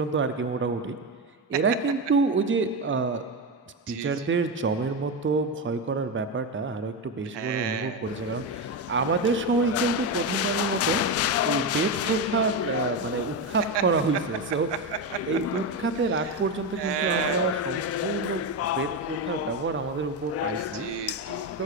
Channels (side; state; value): both; normal; correlation 0.13